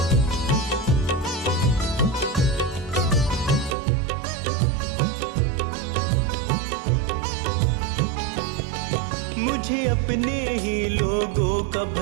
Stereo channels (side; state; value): left; drops out; at 3.8 s